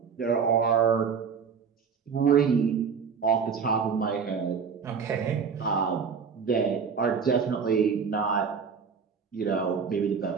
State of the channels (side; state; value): left; quieter; 6.2 dB